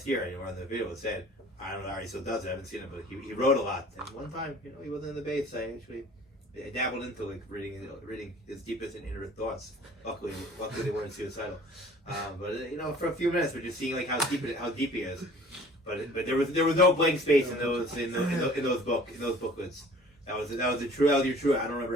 year, on the video, it said, I don't know how he still does it. I haven't seen it, but he wrote a lot. And one time, he wasn't in the base. I actually dabbled into reading his deepest and inner thoughts. Luckily they weren't suicidal. But for a few minutes, we're just seeing how deep he is. But there was no blank space in those booklets. That was your true. I don't remember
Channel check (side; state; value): both; normal; correlation 0.50